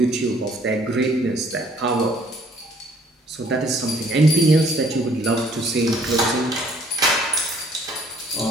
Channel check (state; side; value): normal; both; correlation 0.60